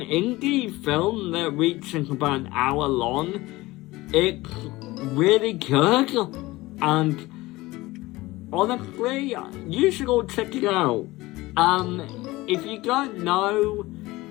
film that reaches about an hour long, it's really good, and honestly, you should all check it out. If you don't know,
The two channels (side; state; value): right; quieter; 19.7 dB